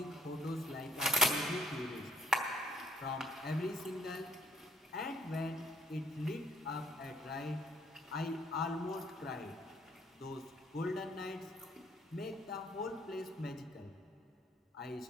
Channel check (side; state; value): both; normal; correlation 0.64